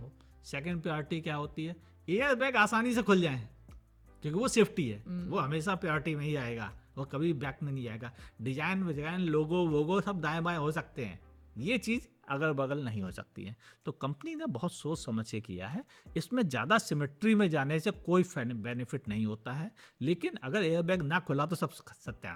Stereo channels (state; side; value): identical; both; correlation 1.00